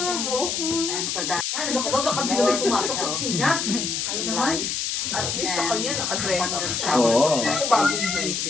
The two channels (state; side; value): noise; left; hiss, 1 dB below the sound